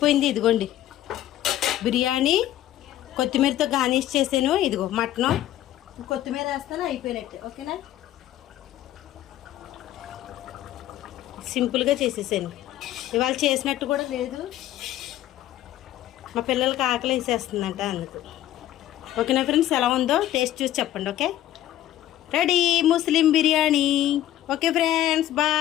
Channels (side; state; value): right; quieter; 13.3 dB